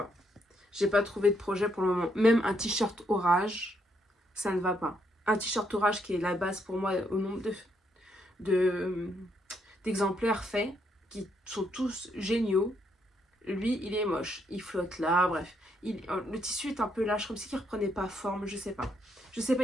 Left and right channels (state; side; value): normal; both; correlation 0.75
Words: J'ai pas trouvé de projet pour le moment. Même un t-shirt orage, ça ne va pas. Un t-shirt orage qui est la base pour moi au nombre d'exemplaires faits, qui sont tous géniaux. Lui, il est moche. Il flotte là, bref. Le tissu est un peu lâche, comme si il reprenait pas forme, je sais pas. Je sais pas